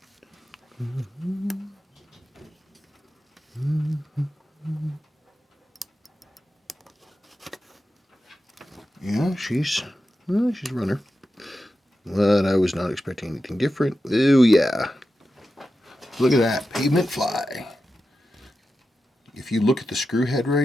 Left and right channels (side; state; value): both; normal; correlation 0.91